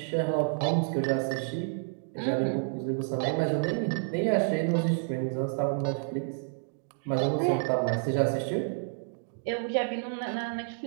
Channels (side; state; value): left; silent; digital silence